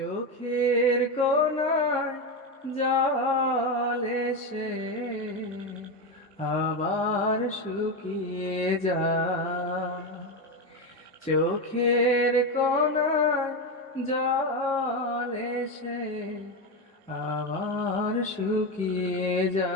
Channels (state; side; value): normal; both; correlation 0.13